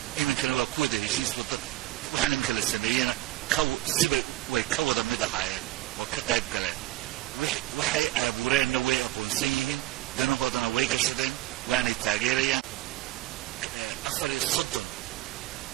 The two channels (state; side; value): quieter; left; 16.4 dB